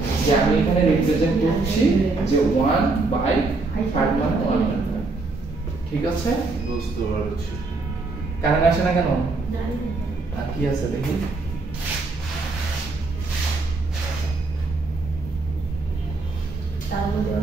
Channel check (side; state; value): left; quieter; 3.6 dB